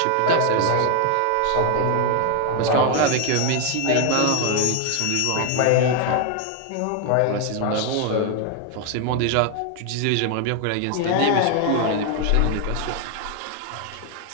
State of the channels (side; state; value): both; different; correlation 0.01